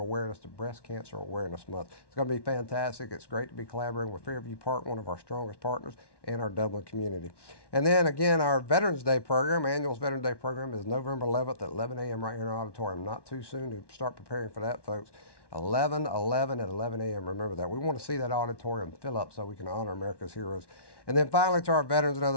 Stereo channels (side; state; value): right; late; 1.1 ms